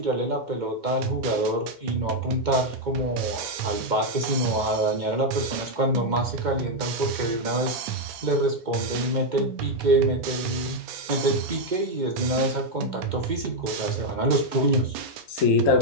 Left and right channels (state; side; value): late; left; 2.1 ms